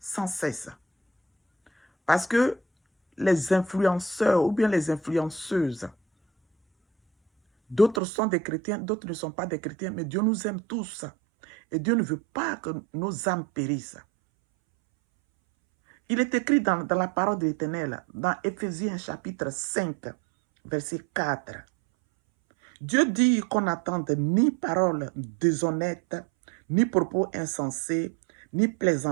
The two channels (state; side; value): drops out; left; at 8.0 s